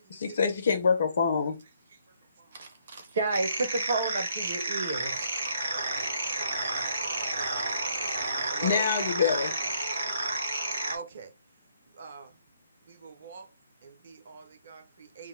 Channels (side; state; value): both; inverted; correlation -0.69